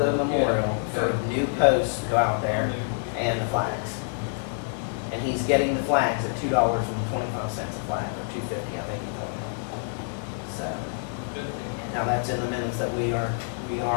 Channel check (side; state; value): right; silent; digital silence